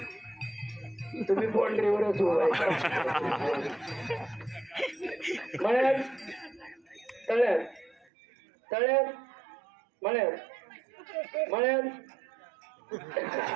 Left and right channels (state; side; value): drops out; left; at 8.1 s